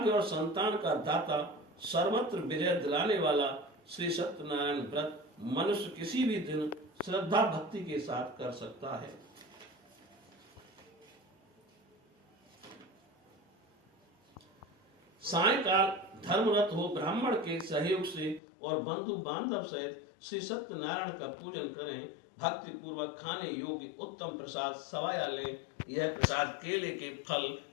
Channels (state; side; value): drops out; right; at 18.4 s